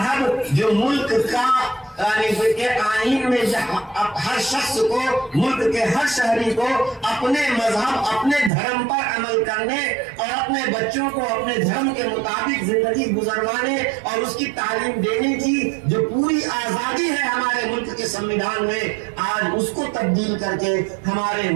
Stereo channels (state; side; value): drops out; left; at 8.5 s